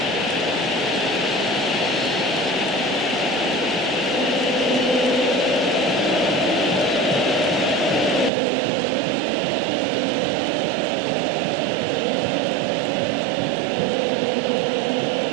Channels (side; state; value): left; drops out; at 8.3 s